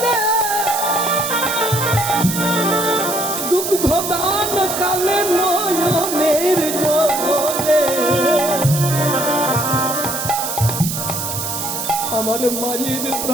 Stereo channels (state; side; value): noise; right; hiss, 4 dB below the sound